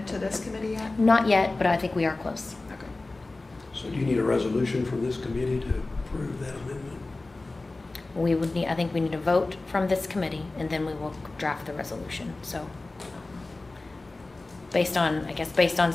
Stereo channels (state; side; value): quieter; right; 3.2 dB